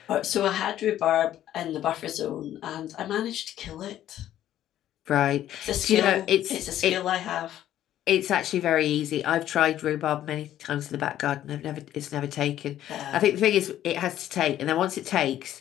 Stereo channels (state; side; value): quieter; right; 12.2 dB